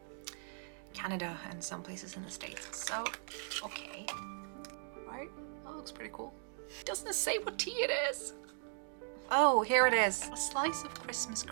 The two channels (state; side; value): silent; left; 52 dB below the other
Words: Canada and some places in the States. So, okay. Right, that looks pretty cool. Doesn't say what tea it is. Oh, here it is. A slice of Christmas